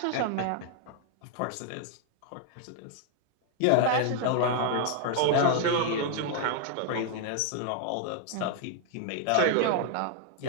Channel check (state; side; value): different; both; correlation 0.00